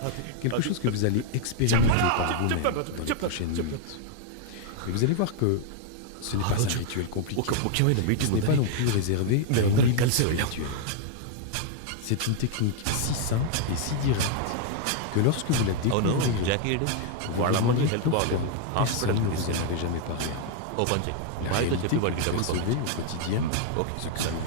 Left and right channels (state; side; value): different; both; correlation 0.00